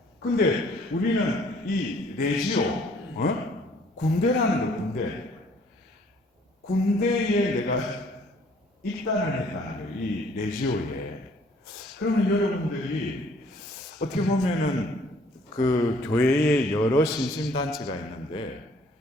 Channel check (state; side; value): normal; both; correlation 0.59